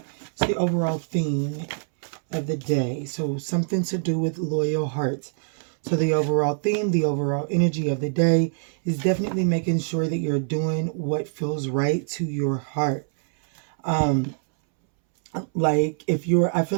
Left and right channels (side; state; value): left; silent; 62 dB below the other